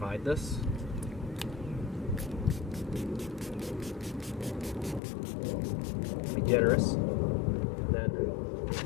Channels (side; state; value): right; drops out; at 5.0 s